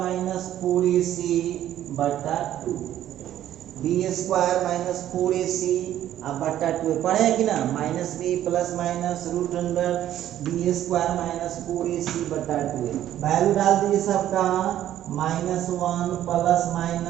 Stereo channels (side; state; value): left; quieter; 12.0 dB